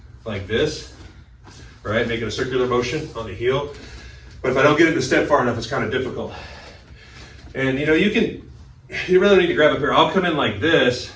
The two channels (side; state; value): both; identical; correlation 1.00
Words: like this, right? Making a circular motion on the heel. But if I don't get it to step far enough, it's kind of difficult. And you know, you really don't need to grab up here. I'll come in like this,